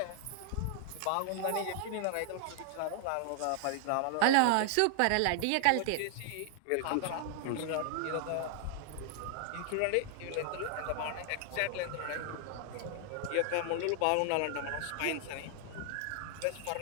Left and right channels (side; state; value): both; different; correlation 0.00